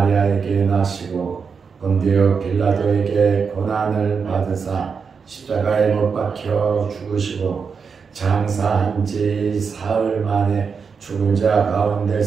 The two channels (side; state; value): left; quieter; 5.7 dB